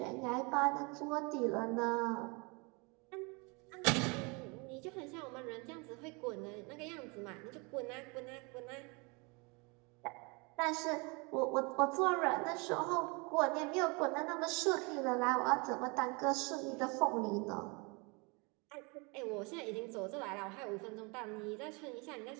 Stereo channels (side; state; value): left; quieter; 29.7 dB